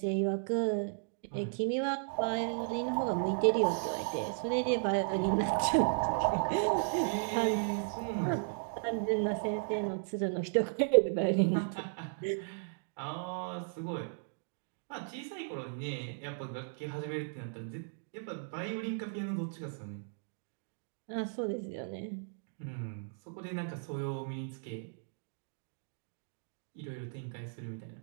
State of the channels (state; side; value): silent; left; digital silence